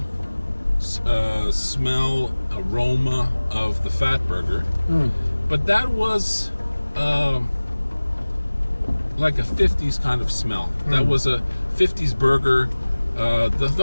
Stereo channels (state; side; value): inverted; both; correlation -1.00